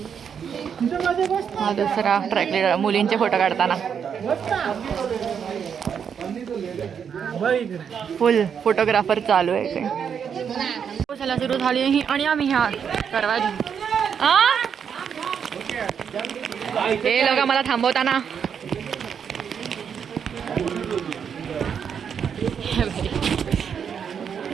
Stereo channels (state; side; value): quieter; left; 7.4 dB